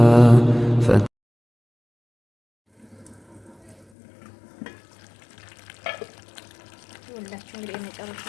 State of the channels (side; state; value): right; drops out; at 3.9 s